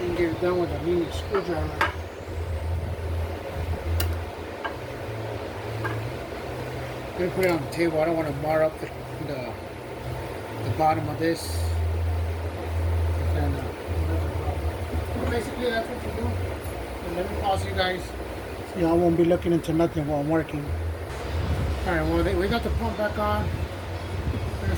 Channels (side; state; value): both; identical; correlation 1.00